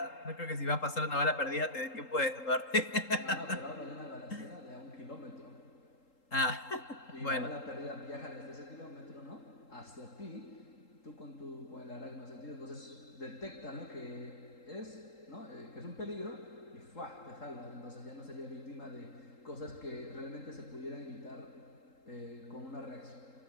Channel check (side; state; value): right; late; 3.8 ms